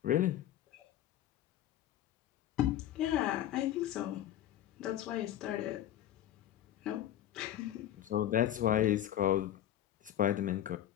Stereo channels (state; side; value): quieter; right; 12.0 dB